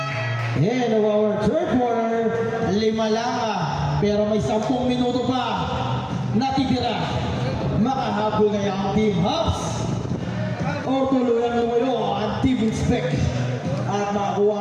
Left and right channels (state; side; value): identical; both; correlation 1.00